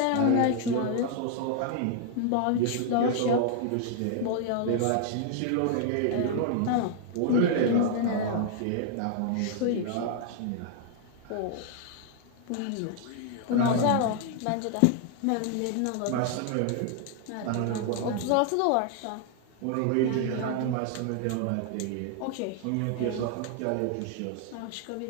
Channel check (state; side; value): different; both; correlation 0.00